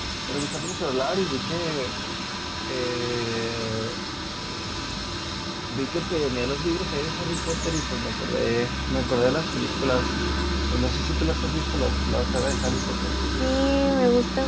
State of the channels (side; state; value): both; identical; correlation 1.00